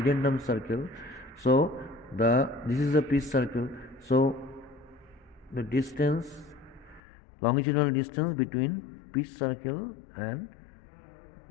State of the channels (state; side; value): drops out; right; at 7.0 s